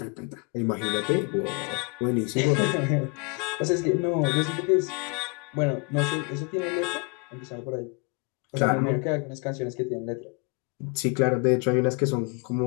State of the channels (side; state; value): right; quieter; 33.4 dB